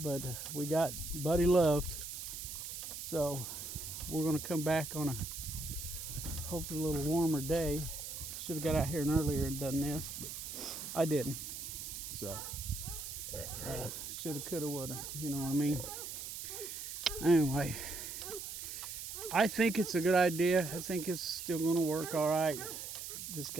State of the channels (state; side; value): noise; right; hiss, 7 dB below the sound